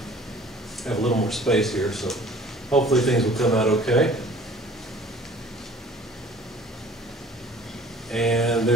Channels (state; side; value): normal; both; correlation 0.50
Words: a little more space here, so hopefully things will come out okay. And